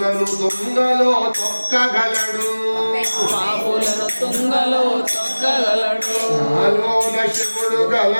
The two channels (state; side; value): inverted; both; correlation -1.00